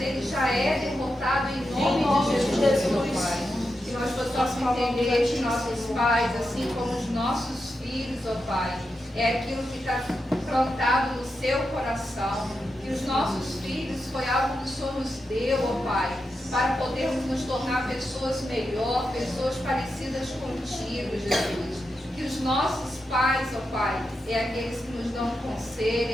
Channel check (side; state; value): both; normal; correlation 0.88